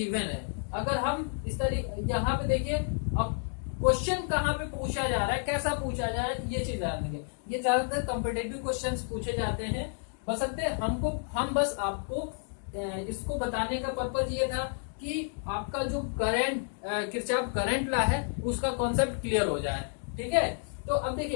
है। अगर हम इस तरीके यहाँ पे देखिए अब क्वेश्चन कहाँ पे पूछा जा रहा है, कैसा पूछा जा रहा है, ये चीज ध्यान देंगे। ये ज्यादातर कॉम्पिटेटिव क्वेश्चंस पूछे जाते हैं, बशर्ते हम बस आपको इसको बताने का पर्पज ये था कि आपका जो करंट किरचॉफ करंट लॉ है उसका कॉन्सेप्ट क्लियर हो जाए, ठीक है। तो अब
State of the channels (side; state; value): right; silent; 56 dB below the other